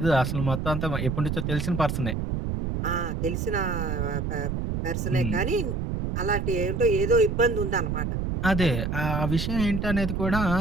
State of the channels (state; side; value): noise; right; rumble, 2 dB below the sound